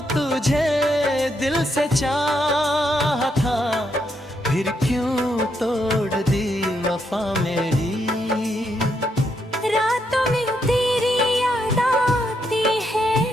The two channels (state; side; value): normal; both; correlation 0.78